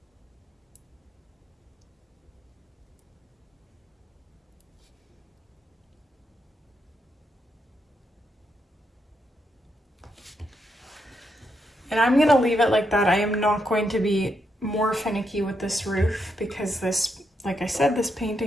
and I'm gonna leave it like that. I am not going to be more finicky with this roof because this, like I said, this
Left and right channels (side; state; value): both; normal; correlation 0.80